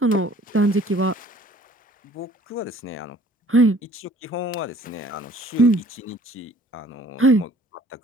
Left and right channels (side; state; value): both; normal; correlation 0.54